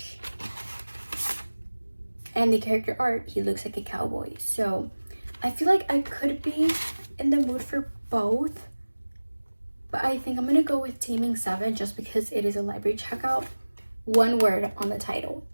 And the character art, he looks like a cowboy. So I feel like I could be in the mood for both. But I think I'm gonna go with Taming 7 just because it is a library checkout. One word on the title,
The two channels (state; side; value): inverted; both; correlation -1.00